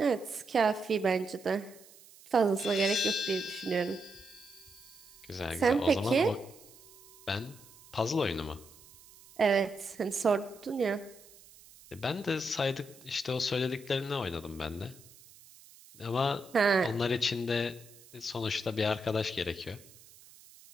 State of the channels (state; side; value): noise; right; hiss, 23 dB below the sound